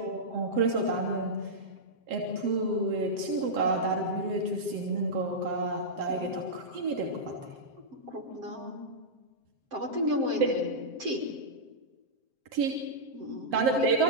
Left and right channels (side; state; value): left; late; 7.6 ms